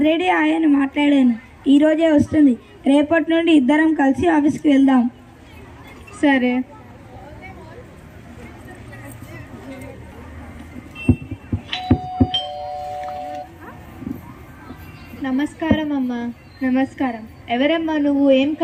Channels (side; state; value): both; identical; correlation 1.00